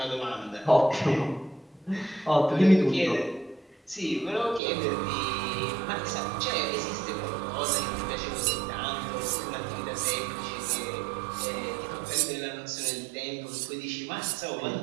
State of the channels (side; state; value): left; drops out; at 4.6 s